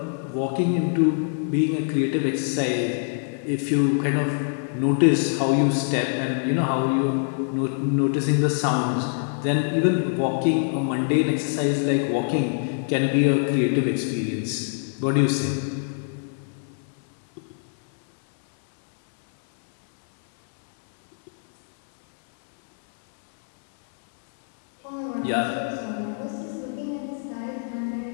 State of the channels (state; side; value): silent; right; digital silence